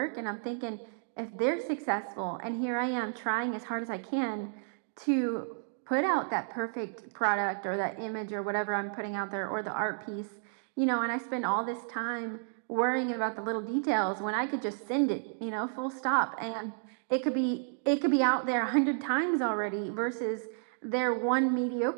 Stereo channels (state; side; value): silent; left; digital silence